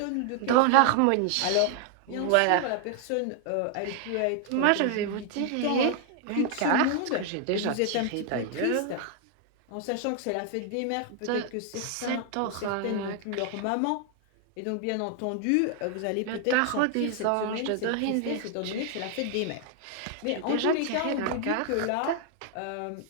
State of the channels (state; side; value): different; both; correlation 0.00